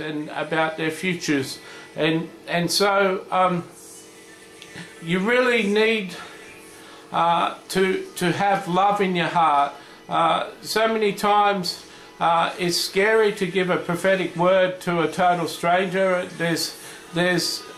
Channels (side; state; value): both; identical; correlation 1.00